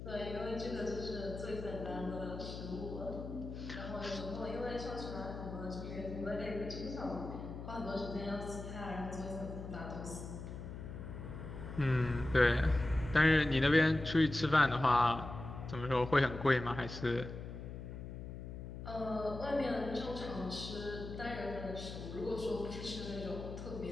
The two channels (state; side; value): noise; left; hum, 9 dB below the sound